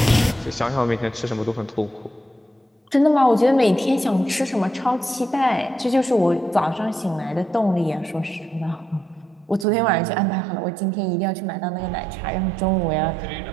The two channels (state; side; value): drops out; left; at 9.7 s